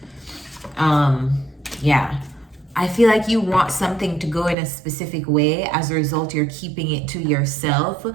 Yeah. I feel like you want something to go in a specific way. As a result, you're keeping it to yourself,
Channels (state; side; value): drops out; left; at 4.5 s